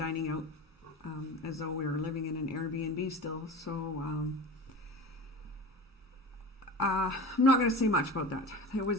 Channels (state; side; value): normal; both; correlation 0.33